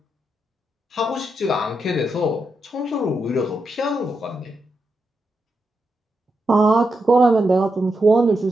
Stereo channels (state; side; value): normal; both; correlation 0.85